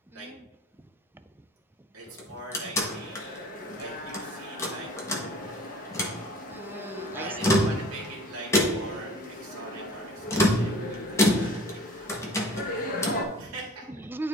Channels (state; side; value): normal; both; correlation 0.46